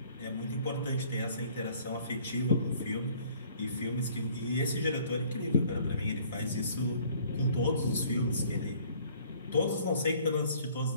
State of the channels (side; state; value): both; inverted; correlation -0.56